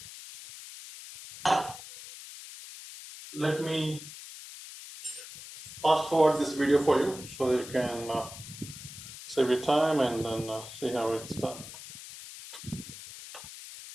Let me fast forward this video for you so that you can save your time and then see how it's done.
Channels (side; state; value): left; noise; hiss, 13 dB below the sound